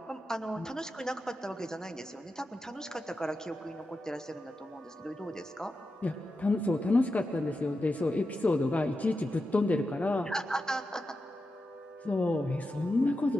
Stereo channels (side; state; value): both; normal; correlation 0.89